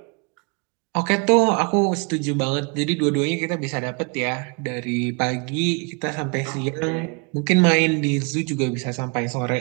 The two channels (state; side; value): quieter; left; 33.1 dB